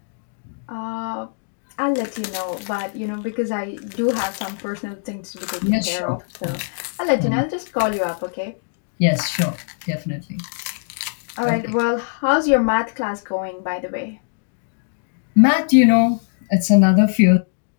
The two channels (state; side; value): silent; right; digital silence